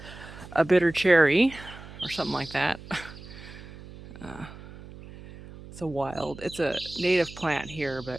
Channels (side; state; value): right; noise; hum, 16 dB below the sound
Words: cherry or something like that. It's a native plant here,